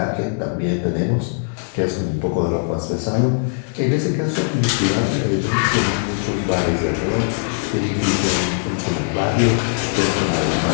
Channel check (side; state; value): right; silent; digital silence